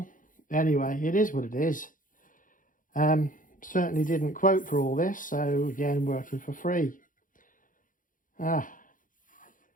Anyway, it is what it is. Certainly didn't quote for all this, so again, working for free.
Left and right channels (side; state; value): right; late; 0.39 ms